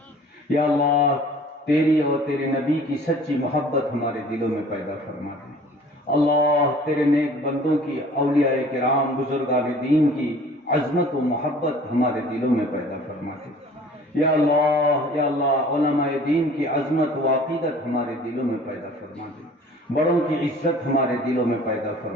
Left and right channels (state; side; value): normal; both; correlation 0.49